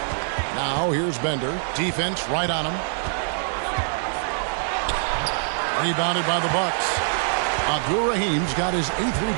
Now here's Bender. Defense right on him. Rebounded by the Bucks. Abdul-Rahim's got his 8th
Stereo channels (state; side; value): silent; left; digital silence